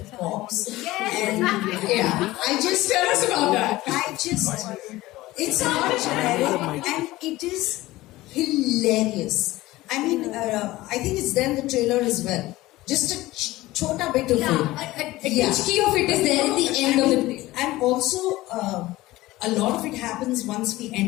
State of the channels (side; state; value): right; quieter; 18.0 dB